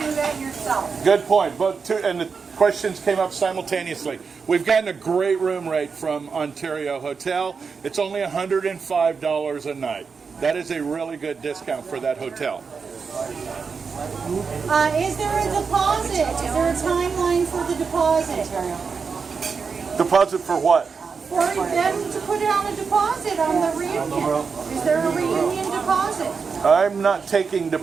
that yourself. Good point. And the questions came up simultaneously. We've gotten a great room rate from Ontario Hotel. It's only $105 a night. That is a really good discount for that hotel. Is there a deposit? Is there a timeline for the deposit? Deposit for what? For them to put down a deposit on the reunion. Is there a reunion deposit? I'm not taking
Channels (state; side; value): quieter; left; 5.4 dB